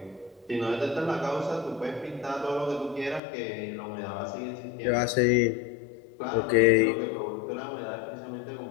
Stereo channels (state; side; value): drops out; right; at 3.2 s